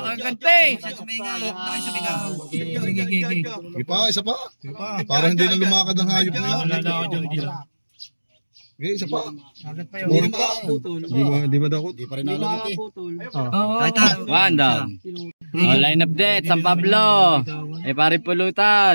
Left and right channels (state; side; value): inverted; both; correlation -1.00